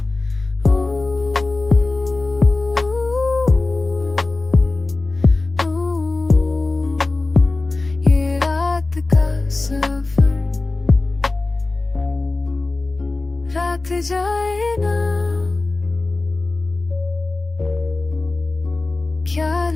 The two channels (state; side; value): quieter; right; 3.3 dB